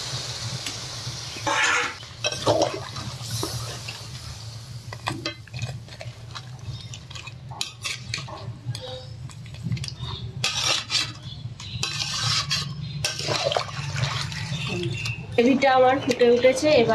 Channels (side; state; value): both; identical; correlation 1.00